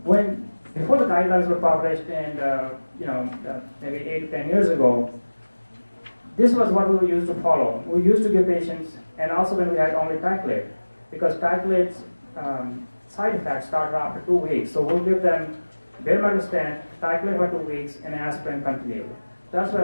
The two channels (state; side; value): inverted; both; correlation -1.00